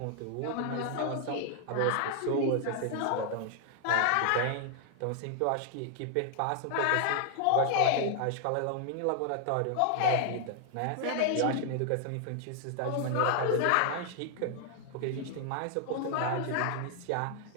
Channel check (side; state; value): both; different; correlation 0.00